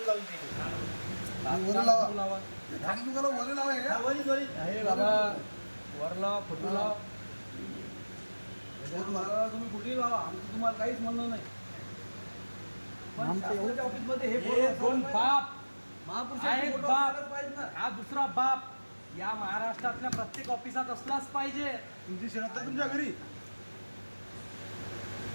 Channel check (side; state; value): both; inverted; correlation -1.00